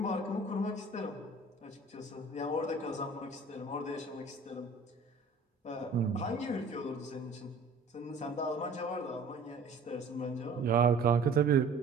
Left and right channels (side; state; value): left; quieter; 3.5 dB